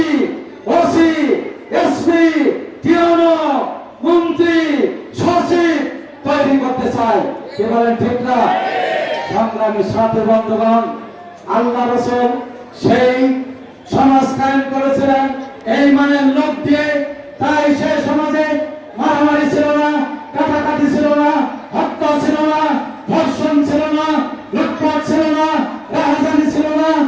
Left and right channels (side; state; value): both; identical; correlation 1.00